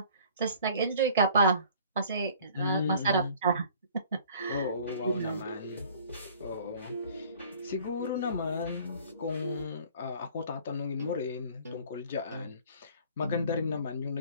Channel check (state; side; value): inverted; both; correlation -0.51